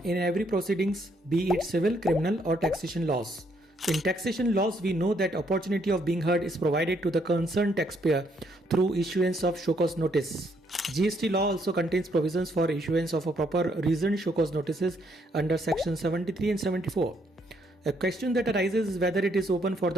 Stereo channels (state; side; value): normal; both; correlation 0.71